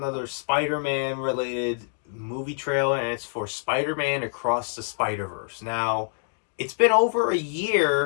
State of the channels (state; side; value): silent; right; digital silence